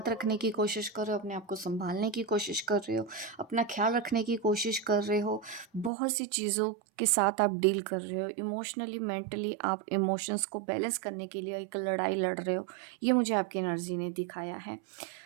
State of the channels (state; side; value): drops out; left; at 5.9 s